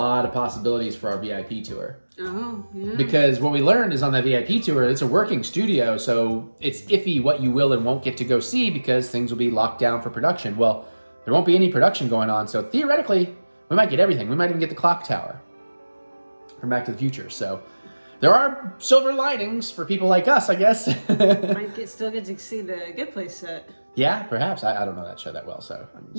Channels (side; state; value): both; inverted; correlation -1.00